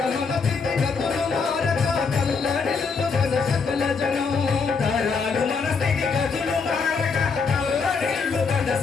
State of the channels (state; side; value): quieter; right; 5.1 dB